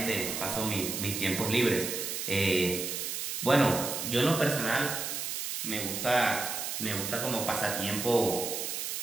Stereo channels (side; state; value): right; noise; hiss, 3 dB below the sound